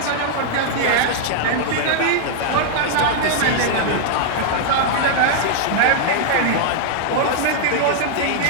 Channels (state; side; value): different; both; correlation -0.01